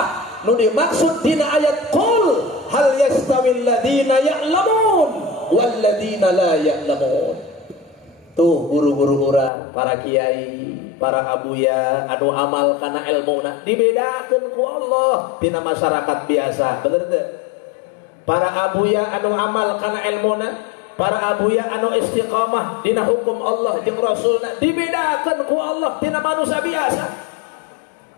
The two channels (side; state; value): right; drops out; at 9.5 s